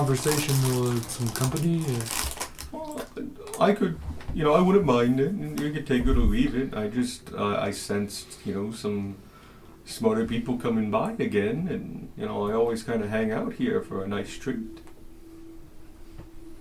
or some company? Well, I could, I wouldn't mind it. You could take it or leave it. I just, I sensed, some smarter people coming by again, and, I always kind of hang out here for a nice treat.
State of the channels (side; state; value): both; identical; correlation 1.00